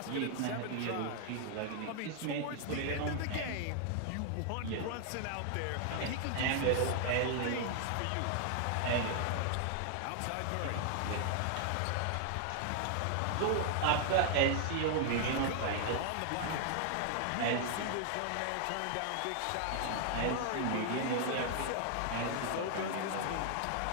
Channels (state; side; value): different; both; correlation 0.00